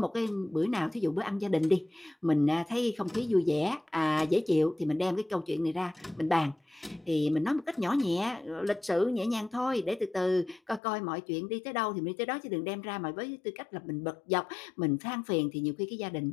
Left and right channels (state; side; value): drops out; right; at 10.8 s